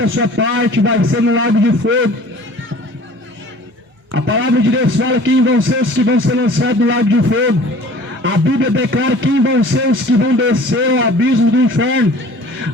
sua parte vai ser no lago de fogo. A palavra de Deus fala quem vão ser os que vão ser lançados no lago de fogo. A Bíblia declara quem vão ser os que vão descer ao abismo do inferno.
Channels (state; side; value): normal; both; correlation 0.47